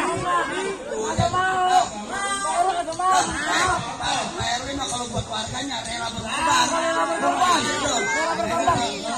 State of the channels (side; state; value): both; identical; correlation 1.00